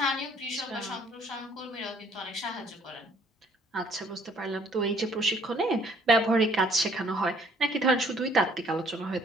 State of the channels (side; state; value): both; normal; correlation 0.61